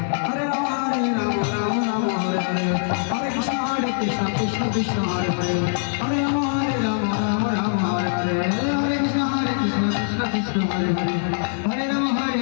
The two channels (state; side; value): silent; right; digital silence